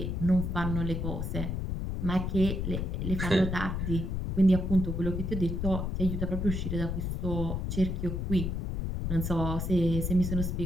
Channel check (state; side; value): noise; left; rumble, 2 dB below the sound